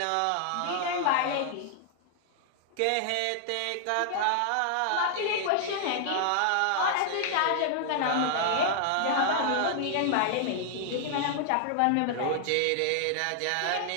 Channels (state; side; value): different; both; correlation 0.00